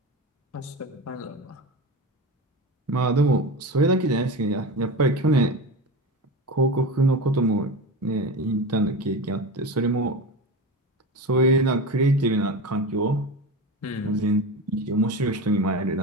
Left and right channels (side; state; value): both; normal; correlation 0.25